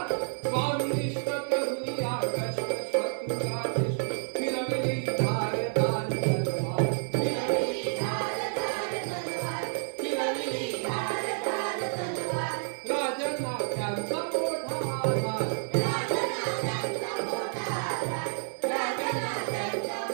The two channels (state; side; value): silent; left; 58 dB below the other